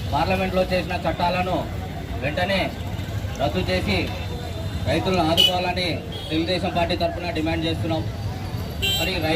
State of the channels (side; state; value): both; identical; correlation 1.00